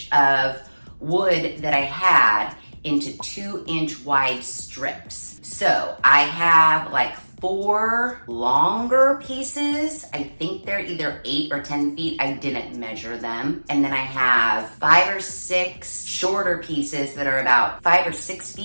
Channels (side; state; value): both; inverted; correlation -1.00